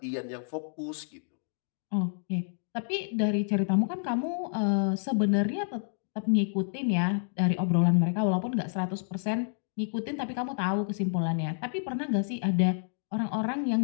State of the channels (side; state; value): right; silent; digital silence